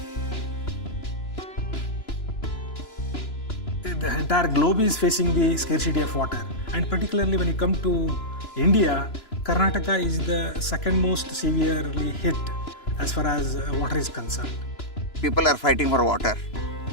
The entire globe is facing the scarcity of water, and particularly when you come to India, Karnataka is the second most severely hit as far as water is concerned. People are fighting for water.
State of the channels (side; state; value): right; late; 3.0 ms